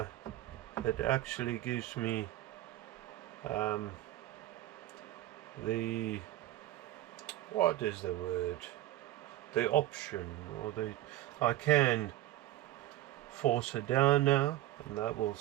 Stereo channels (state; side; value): quieter; left; 14.9 dB